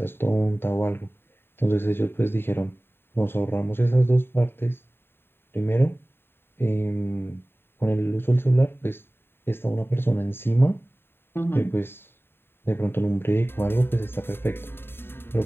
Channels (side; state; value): right; late; 0.11 ms